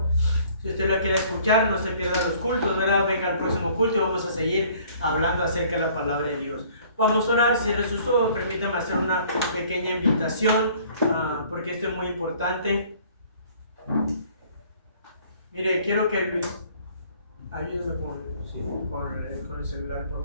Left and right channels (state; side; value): inverted; both; correlation -0.56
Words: Si usted lo quiere escuchar, no se pierda los cultos, ¿verdad? Venga al próximo culto y vamos a seguir hablando acerca de la palabra de Dios. Vamos a orar, cierre sus ojos, permítame hacer una pequeña invitación, porque esto es muy importante. Mire, quiero que ayúdame con el celular,